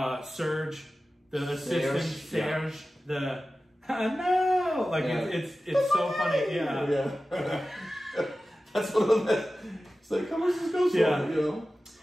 Serge, the assistant, Serge, no! Like, it's so funny. Yeah. That's one of the best. It's like, how much does this go for, you know?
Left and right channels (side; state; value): both; normal; correlation 0.95